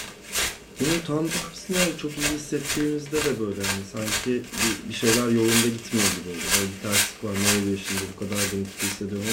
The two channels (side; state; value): both; identical; correlation 1.00